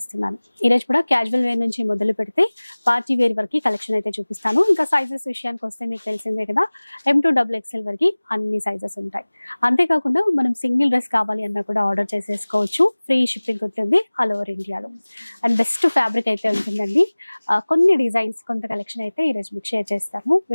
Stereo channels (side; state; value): both; inverted; correlation -1.00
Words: ఈ రోజు కూడా క్యాజువల్ వేర్ నుంచి మొదలు పెడితే పార్టీ వేర్ వరకు కలెక్షన్ అయితే చూపిస్తాను. ఇంకా సైజెస్ విషయానికి వస్తే మీకు తెలిసిందే కదా, M2XXL వరకు అన్ని సైజెస్ ఉంటాయి. అంతేకాకుండా మనం సింగిల్ డ్రెస్ కావాలి అన్నా కూడా ఆర్డర్ చేసేసుకోవచ్చు. ఫ్రీ షిప్పింగ్ ఉంటుంది ఆల్ ఓవర్ ఇండియాలో. అండ్ బెస్ట్ ఫ్యాబ్రిక్ అయితే ఉంటుందండి. కొన్ని డిజైన్స్, కొంత కలెక్షన్ అయితే ఈరోజు మీకు షేర్ చేస్తాము.